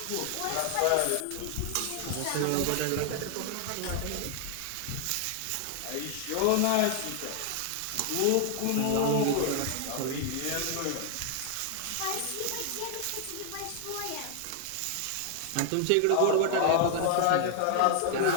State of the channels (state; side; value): different; both; correlation 0.00